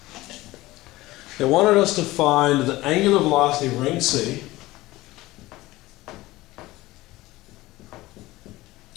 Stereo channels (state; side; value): quieter; right; 18.6 dB